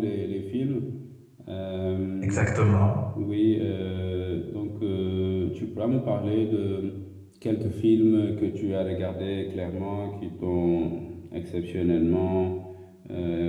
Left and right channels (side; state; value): both; identical; correlation 1.00